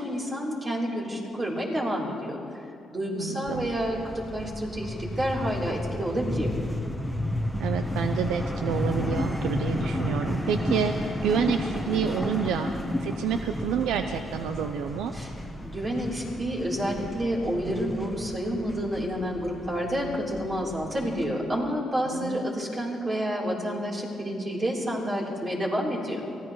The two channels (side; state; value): both; normal; correlation 0.75